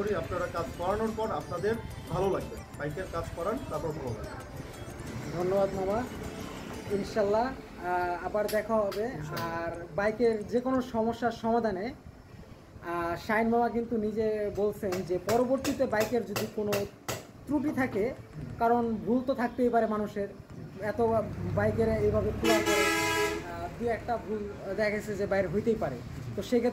আপনারা কাজ করানোর পর আপনাদের ভালো লাগবে, বাইকের কাজ করান তারপর ভালো লাগবে। ধন্যবাদ মামা, ইনশাল্লাহ আবার দেখা হবে। আর বাইকের যে কোনো সমস্যার সমাধানে শাহিন মামা কিন্তু নিজে বলছেন যে পরবর্তীতে বাইকের যদি কোনো ত্রুটি থাকে, কারণ ভুল তো থাকতেই পারে মানুষের, এত বাইকের এইভাবে খোলা করে দু একটা ভুল দেখা গেছে যে বাইরে হইতেই পারে। তো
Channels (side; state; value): both; identical; correlation 1.00